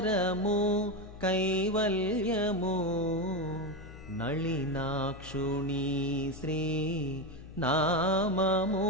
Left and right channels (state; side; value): noise; left; hum, 15 dB below the sound